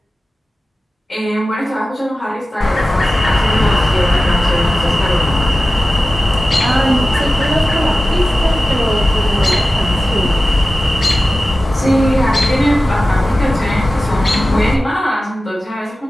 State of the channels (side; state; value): both; normal; correlation 0.95